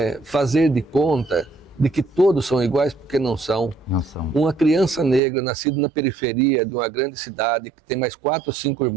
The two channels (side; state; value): left; drops out; at 5.2 s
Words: fazer de conta de que todos são iguais, porque não são. Não são. Uma criança negra, nascida na periferia de uma grande cidade, que tem mais 4 ou 5